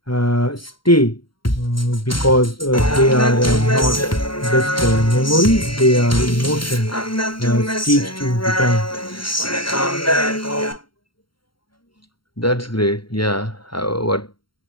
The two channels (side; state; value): right; late; 0.73 ms